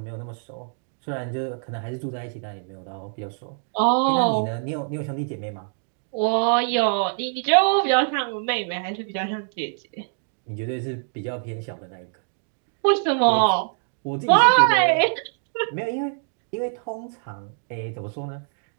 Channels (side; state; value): left; silent; 62 dB below the other